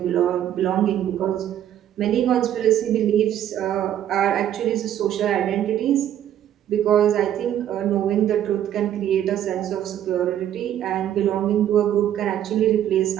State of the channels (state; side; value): quieter; left; 11.0 dB